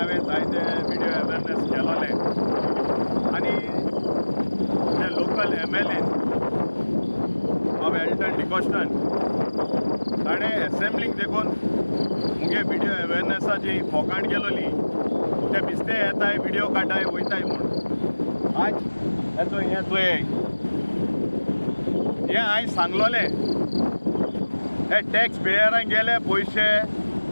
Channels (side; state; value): both; inverted; correlation -1.00